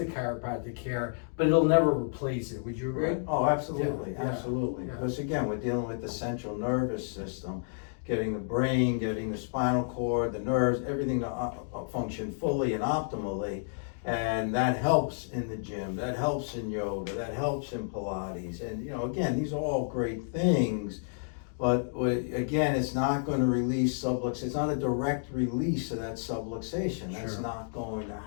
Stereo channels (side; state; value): right; silent; digital silence